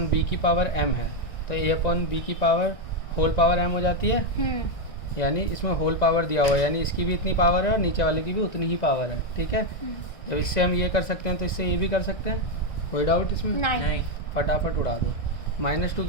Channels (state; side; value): late; right; 1.6 ms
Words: b की पावर m है, तो a अपॉन b की पावर होल पावर m हो जाती है, यानी इसमें होल पावर दिया हुआ है, यानी इसकी भी इतनी पावर है और नीचे वाले की भी उतनी ही पावर है, ठीक है। जब इससे हम ये कर सकते हैं तो इससे ये भी कर सकते हैं, कोई डाउट इसमें? नहीं फटाफट उड़ा दो। -2